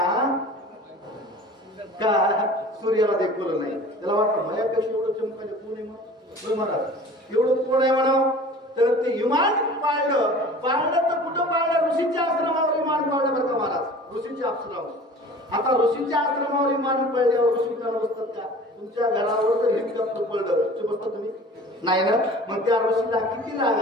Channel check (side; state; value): both; normal; correlation 0.43